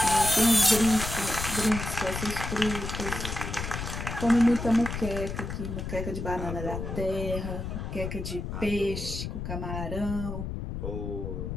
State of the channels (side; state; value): left; noise; rumble, 5 dB below the sound